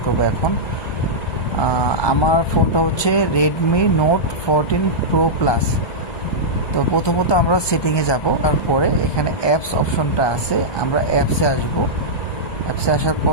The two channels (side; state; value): right; late; 1.2 ms